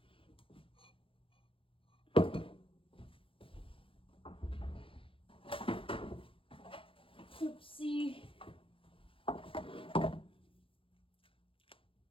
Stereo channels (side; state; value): right; late; 0.26 ms